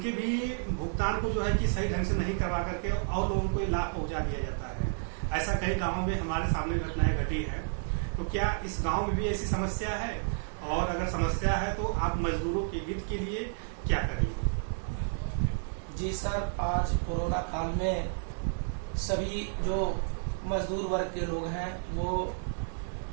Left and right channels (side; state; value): left; silent; digital silence